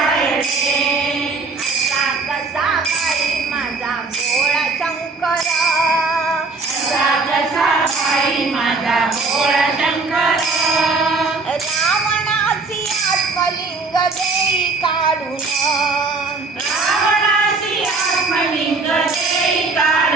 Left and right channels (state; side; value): quieter; left; 3.9 dB